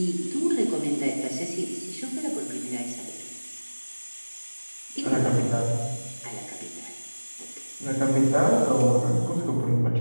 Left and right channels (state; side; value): inverted; both; correlation -1.00